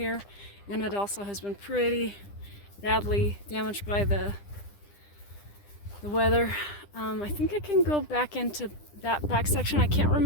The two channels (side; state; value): right; late; 10 ms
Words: and it also has been pretty badly damaged by the weather. I think I can go back into that back section. I can't